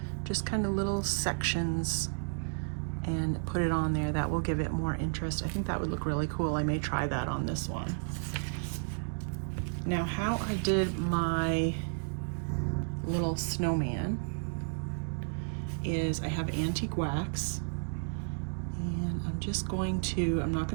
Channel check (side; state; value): left; silent; digital silence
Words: Just kind of little sections, and put it on there. That will give it more interest. I think that would look really cool. I may try that on this one. Now, how I did my little snowman is I have antique wax, and I'm just going to, I'm not